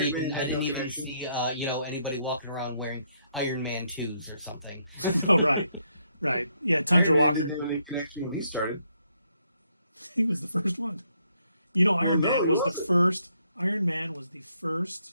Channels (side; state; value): both; inverted; correlation -0.74